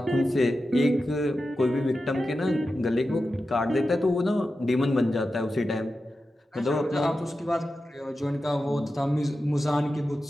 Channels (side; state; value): both; normal; correlation 0.92